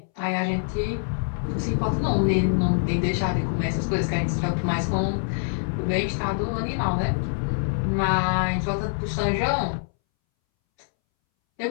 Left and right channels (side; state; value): right; silent; 62 dB below the other